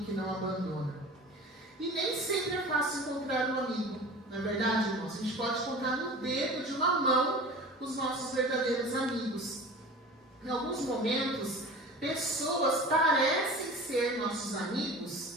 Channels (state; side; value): normal; both; correlation 0.38